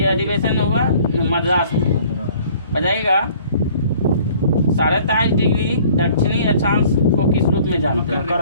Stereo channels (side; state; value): both; inverted; correlation -0.54